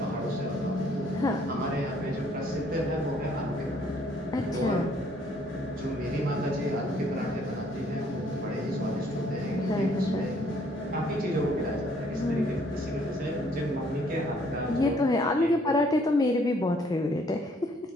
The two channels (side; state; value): both; normal; correlation 0.63